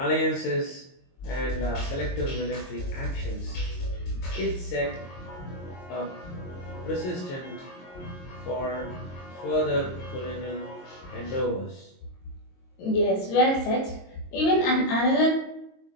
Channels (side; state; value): right; late; 22 ms